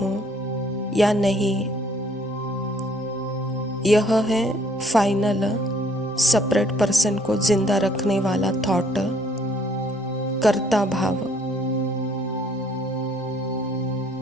या नहीं। यह है फाइनल सेपरेट पर्सन को जिंदा रखने वाला थॉट, कर्ता भाव।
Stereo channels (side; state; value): both; normal; correlation 0.63